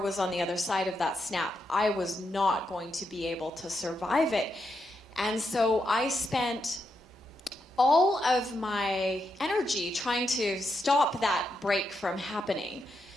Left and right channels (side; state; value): both; normal; correlation 0.83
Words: on the other side of that snap, I was not going to be able to survive it. And so I spent all of my energy trying to stop that break from happening.